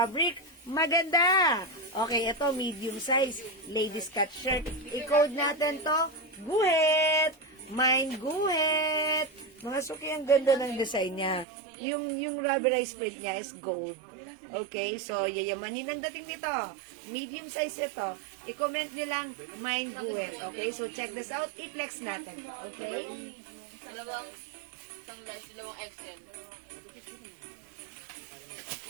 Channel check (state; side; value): drops out; left; at 11.5 s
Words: maganda. Okay, ito, medium size. Ladies cut shirt. I-code natin to. Guhit. Mine guhit. Mga suki, ang ganda ng design niya. Yung rubberized print niya is gold. Okay, so yayamanin ang dating nito. Medium size ito. I-comment nyo lang, mine guhit. Okay, so check this out. I-flex natin. Okay? Dalawang large, dalawang XL.